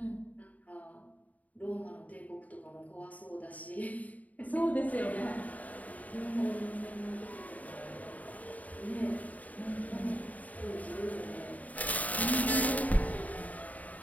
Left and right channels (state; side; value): late; right; 0.073 ms